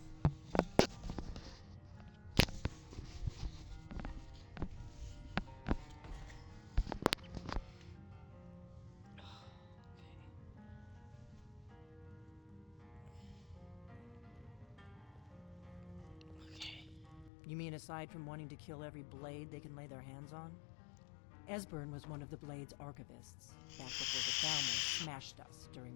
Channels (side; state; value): right; drops out; at 17.3 s